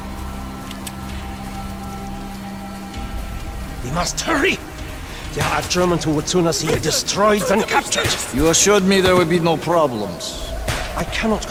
We must hurry! There are Germans who would sooner see you destroyed than captured. You assured me there would be no problems. I cannot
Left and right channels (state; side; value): identical; both; correlation 1.00